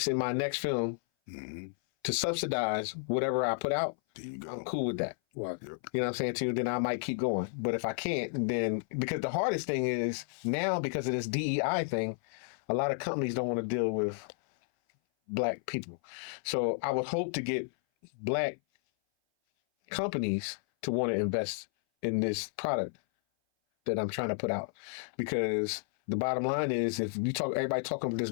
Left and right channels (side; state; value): right; silent; 56 dB below the other